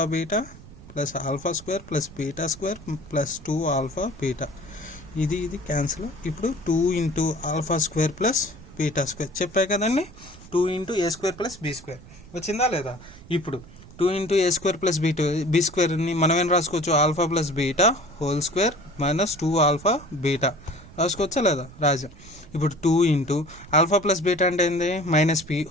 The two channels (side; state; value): right; noise; rumble, 19 dB below the sound